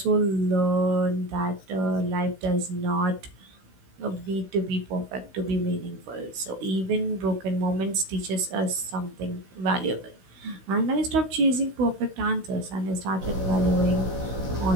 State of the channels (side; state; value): left; late; 16 ms